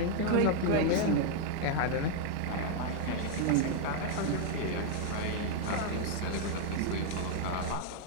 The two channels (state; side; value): different; both; correlation -0.01